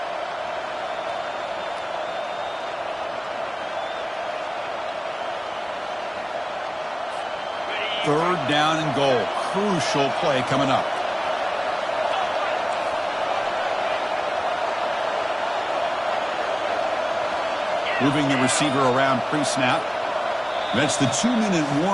Third down and goal. Crucial play coming up. Moving the receiver around pre-snap. That's the 2-minute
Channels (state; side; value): identical; both; correlation 1.00